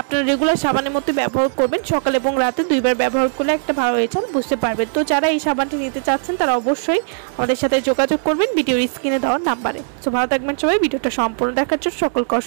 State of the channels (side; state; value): left; silent; digital silence